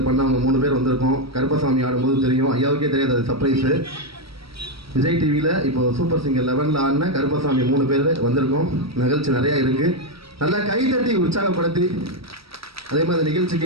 பண்ண அவங்க 3 பேர் வந்திருக்கோம். கருப்பசாமி ஆடும்போது தெரியும், ஐயாவுக்கே தெரியாது, அது சர்ப்ரைஸு. விஜய் டிவியில் இப்போ சூப்பர் சிங்கர் 11 ஆடின கருப்பசாமி 3 பேர் வந்திருக்கோம். நிகழ்ச்சி நிறையா இருக்குது. நல்லா கைதட்டி உற்சாகப்படுத்தி அதே மாதிரி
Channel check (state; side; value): late; left; 0.76 ms